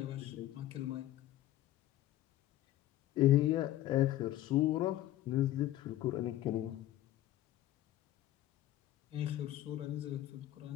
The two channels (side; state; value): right; quieter; 14.3 dB